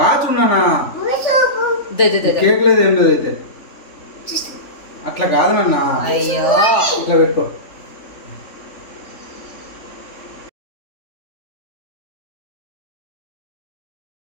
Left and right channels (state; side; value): late; right; 3.4 ms